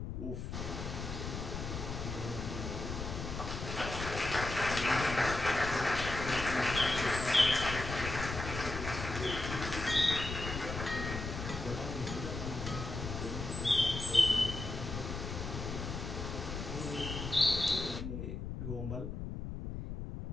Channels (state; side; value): noise; left; rumble, 5 dB below the sound